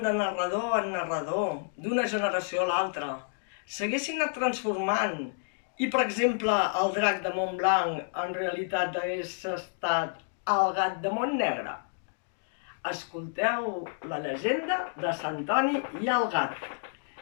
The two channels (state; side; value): silent; right; digital silence